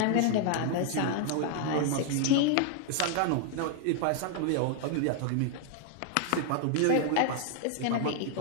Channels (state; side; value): different; both; correlation 0.00